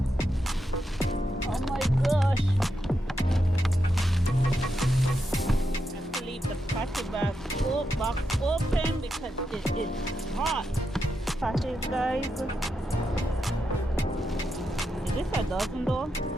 Oh my gosh. I have to leave the party box open because it is hot. Parties, guys. Is this a dozen though?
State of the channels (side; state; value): both; normal; correlation 0.85